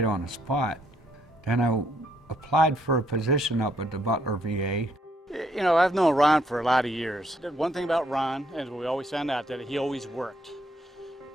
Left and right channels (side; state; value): both; normal; correlation 0.71